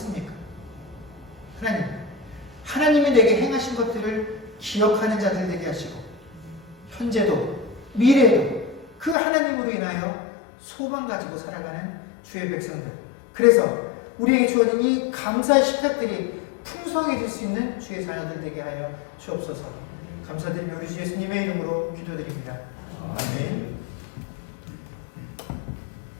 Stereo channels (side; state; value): right; drops out; at 9.2 s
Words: 하나님, 하나님이 내게 행하신 것들을 기억하는 자들 되게 하시고 현재도 미래에도 그 하나님으로 인하여 소망 가지고 살아가는 주의 백성들, 그래서 우리에게 주어진 이 감사의 식탁들이 풍성해질 수 있는 주의 자녀들 되게 하여 주옵소서. 감사드리며 우리 주 예수님의 이름으로 기도드립니다. 아멘.